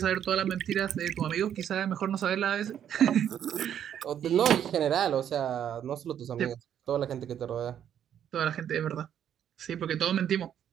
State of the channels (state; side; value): quieter; left; 9.6 dB